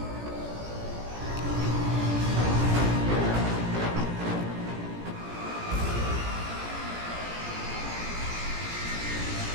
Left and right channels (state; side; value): late; left; 17 ms